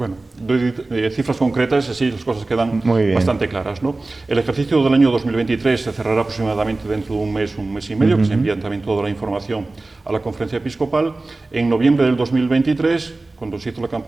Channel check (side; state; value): left; quieter; 3.2 dB